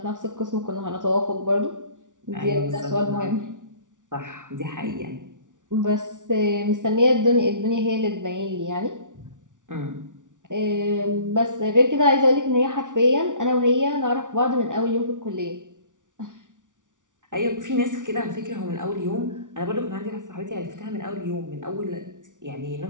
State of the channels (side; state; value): left; late; 0.87 ms